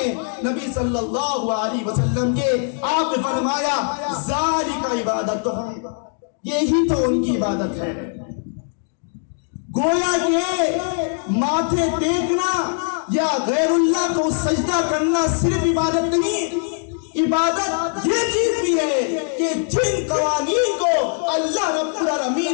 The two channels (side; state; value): right; silent; 64 dB below the other